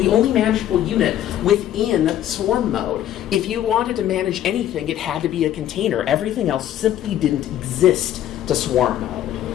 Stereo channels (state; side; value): quieter; right; 11.8 dB